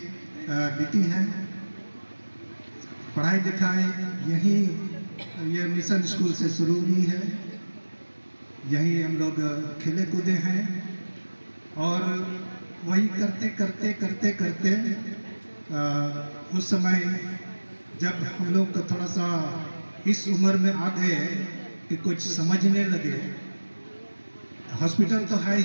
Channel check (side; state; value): both; inverted; correlation -1.00